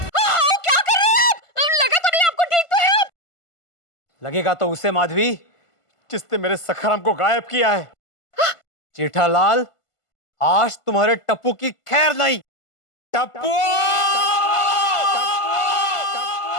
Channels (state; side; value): late; right; 1.5 ms